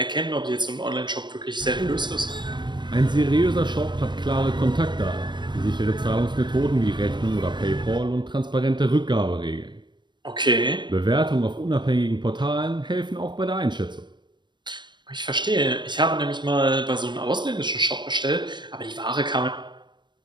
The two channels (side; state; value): left; late; 0.22 ms